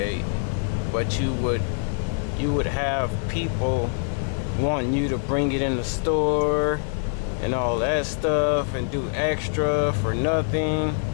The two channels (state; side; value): silent; right; digital silence